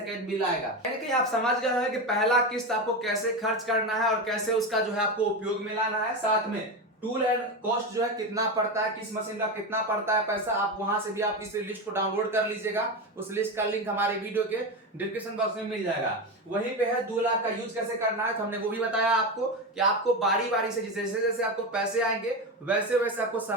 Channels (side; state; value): both; normal; correlation 0.17